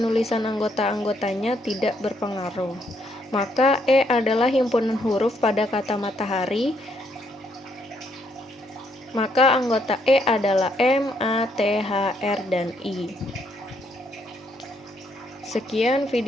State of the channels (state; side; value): normal; both; correlation 0.72